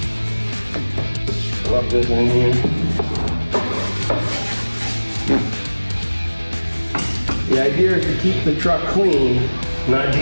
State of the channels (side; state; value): both; inverted; correlation -1.00